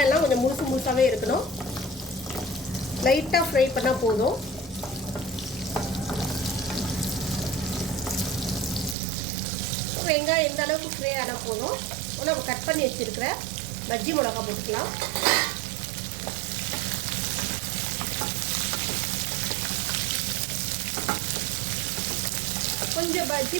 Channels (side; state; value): left; drops out; at 9.0 s